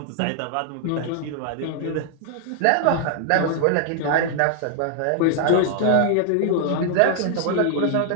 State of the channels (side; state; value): both; different; correlation 0.00